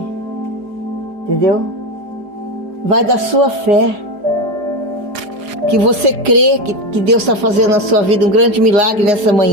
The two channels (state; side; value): late; left; 4.9 ms